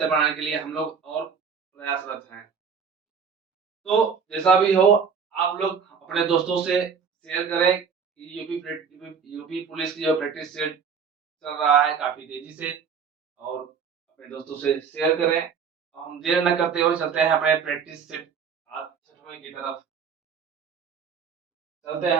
बनाने के लिए हम लोग और प्रयासरत हैं। तो जैसा भी हो, आप लोग अपने दोस्तों से शेयर करें कि यूपी पुलिस की जो प्रैक्टिस सेट चल रहा है काफ़ी तेज़ी से और अपने दोस्तों से शेयर करें। और हम देर न करते हुए चलते हैं अपने प्रैक्टिस सेट आज 6वें की तरफ। चलते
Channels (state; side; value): quieter; left; 6.3 dB